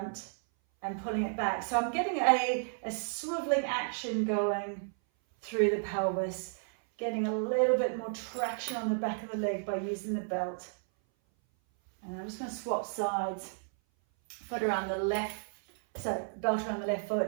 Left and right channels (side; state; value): left; silent; 56 dB below the other